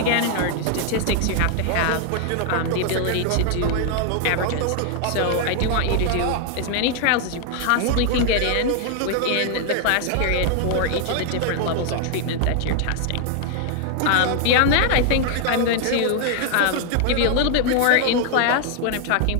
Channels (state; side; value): different; both; correlation 0.00